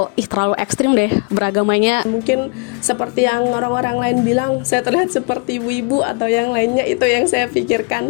terlalu ekstrim deh beragamanya. Mungkin seperti yang orang-orang lain bilang saya terlihat seperti ibu-ibu atau yang lainnya, itu yang saya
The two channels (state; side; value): quieter; right; 33.4 dB